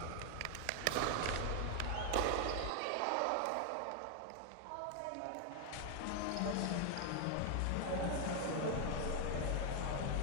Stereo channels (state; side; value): different; both; correlation 0.00